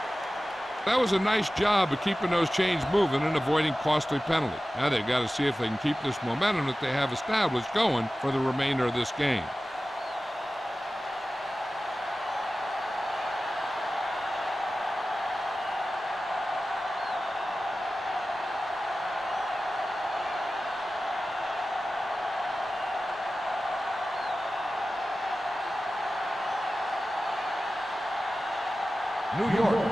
That was a nice job of keeping those chains moving and avoiding costly penalty. Now they've got to see if they can keep this momentum that they have established going for the remainder of this game. New York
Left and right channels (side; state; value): both; normal; correlation 0.95